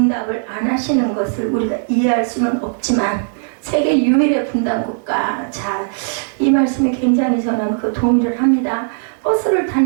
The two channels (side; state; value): left; silent; digital silence